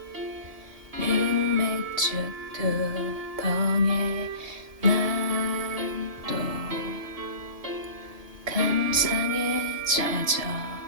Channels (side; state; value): left; late; 1.7 ms